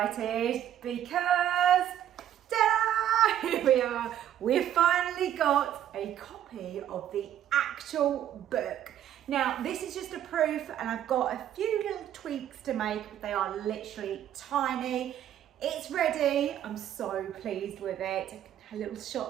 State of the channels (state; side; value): quieter; left; 11.0 dB